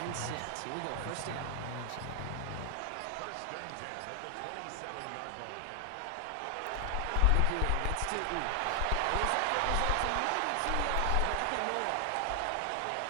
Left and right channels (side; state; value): both; different; correlation 0.00